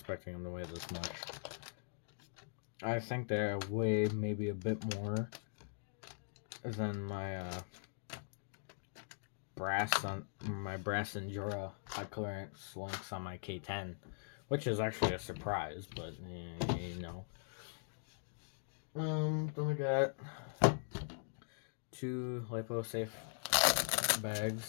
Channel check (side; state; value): right; silent; digital silence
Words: them to weigh this much. I think they weigh maybe a bit more than my brass Endura high clearance links on my K10, which is actually a surprise, but you know. Then I got 2 LipoSafe